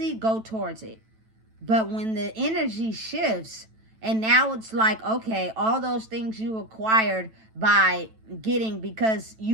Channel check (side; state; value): left; late; 9.1 ms